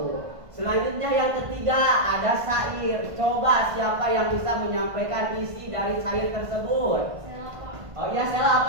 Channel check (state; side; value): late; left; 1.5 ms